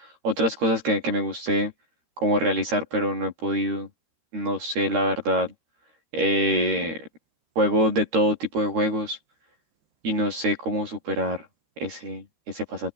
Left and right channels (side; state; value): left; late; 13 ms